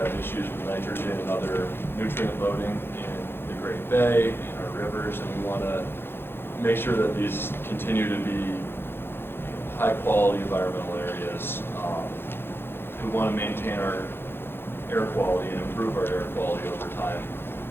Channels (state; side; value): late; right; 0.11 ms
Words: issues with nitrogen and other nutrient loading in the Great Bay, in our rivers, and we want to make sure that these continue to be high quality environmental areas. We want to maintain our air quality and improve our air quality over time.